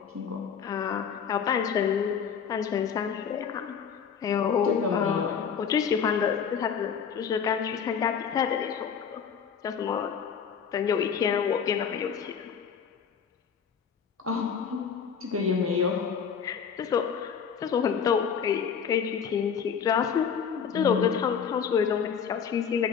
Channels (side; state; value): right; quieter; 7.1 dB